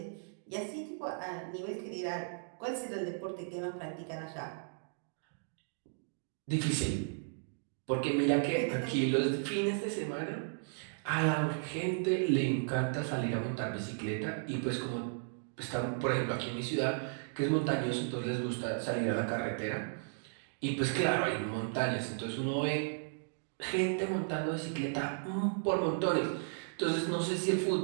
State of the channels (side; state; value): left; silent; digital silence